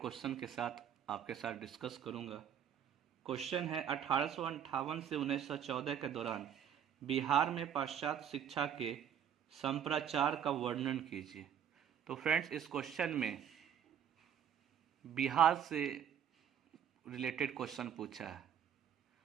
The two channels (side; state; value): left; quieter; 9.0 dB